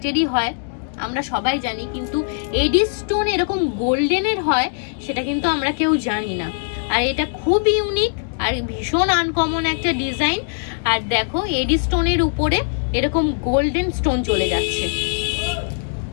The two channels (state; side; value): silent; right; digital silence